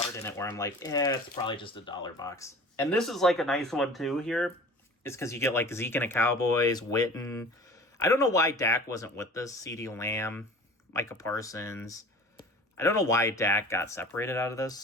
in it where I'm like, it's probably just a dollar box. And this is like a nice one too here. It's because you get like Zeke and the Cowboys, Witten. I don't know why Dak wasn't with this. CeeDee Lamb, Micah Parsons. I don't know why Dak got separated out of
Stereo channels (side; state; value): both; normal; correlation 0.42